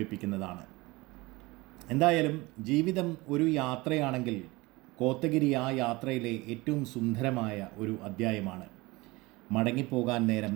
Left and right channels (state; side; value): quieter; left; 22.5 dB